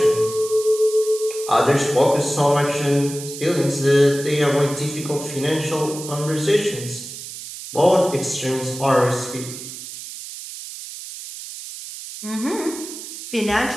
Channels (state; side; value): noise; right; hiss, 11 dB below the sound